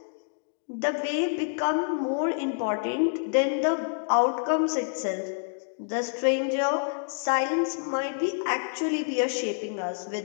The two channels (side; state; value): right; silent; digital silence